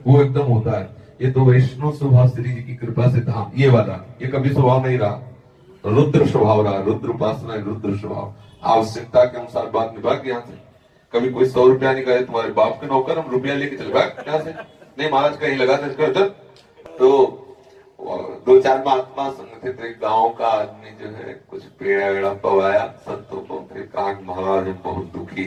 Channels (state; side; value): identical; both; correlation 1.00